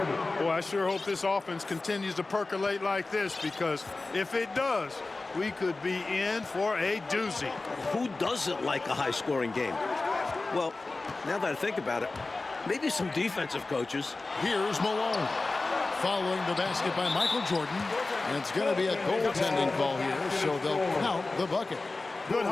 Boy, I sure hope this offense continues to percolate like this, because if it does, we could be in for a doozy. Who doesn't like a high-scoring game? Well, now that I think about it, maybe some defensive coaches. Here's Malone. Following the basket by Michael Jordan. And it's going to be a goaltending call here, so they'll count the bucket. Good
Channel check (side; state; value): right; quieter; 3.4 dB